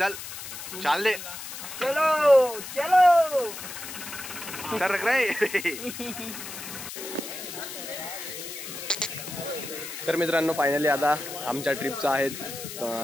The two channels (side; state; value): left; noise; hiss, 10 dB below the sound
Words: दे. चलो चलो सरक रे. तर मित्रांनो फायनली आता आमच्या ट्रिपचा आहे